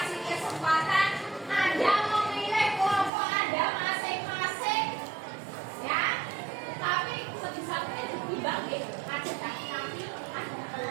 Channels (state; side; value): drops out; left; at 3.1 s